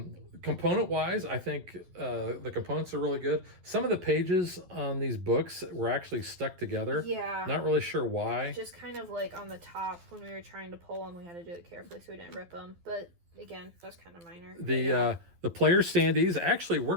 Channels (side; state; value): left; late; 12 ms